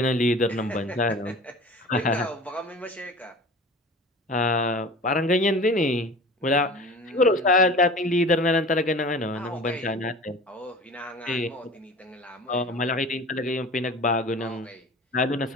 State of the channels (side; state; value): both; normal; correlation 0.39